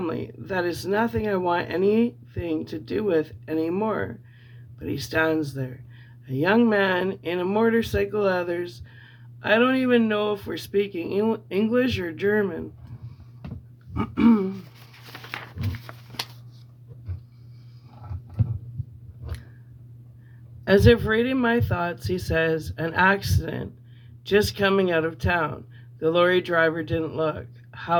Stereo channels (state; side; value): identical; both; correlation 1.00